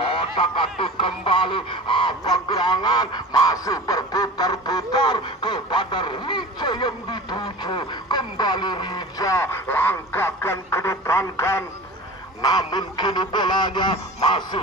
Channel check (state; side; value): normal; both; correlation 0.37